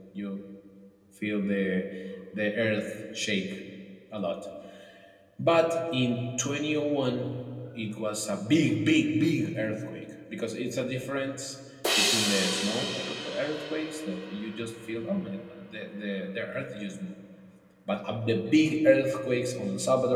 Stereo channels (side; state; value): both; identical; correlation 1.00